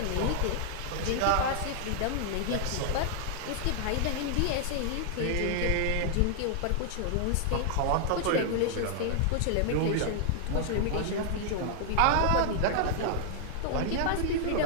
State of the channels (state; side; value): different; both; correlation -0.01